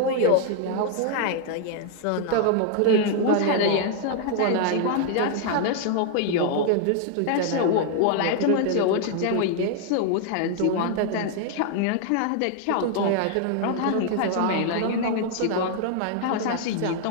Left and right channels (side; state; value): both; different; correlation 0.00